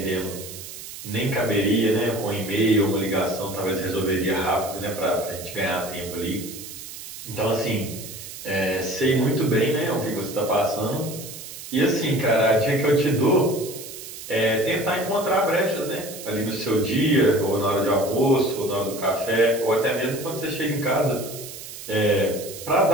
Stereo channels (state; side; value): noise; right; hiss, 12 dB below the sound